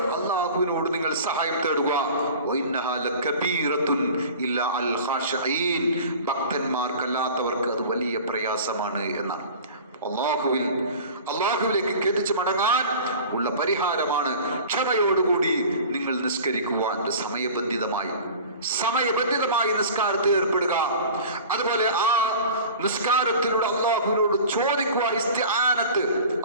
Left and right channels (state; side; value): inverted; both; correlation -0.40